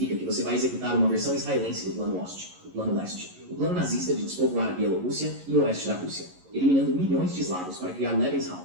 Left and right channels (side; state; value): left; late; 11 ms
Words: que você vai executar uma versão israelense do Plano Oeste, o Plano Leste, o plano nazista de despovoar a Bielorrússia e o oeste da Rússia, eliminando milhões de eslavos para criar Lebensraum,